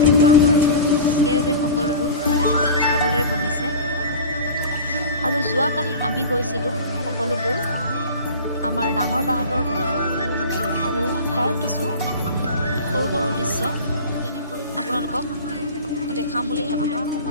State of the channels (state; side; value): inverted; both; correlation -0.35